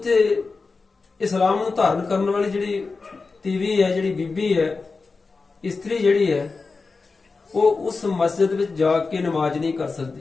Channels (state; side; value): quieter; right; 4.2 dB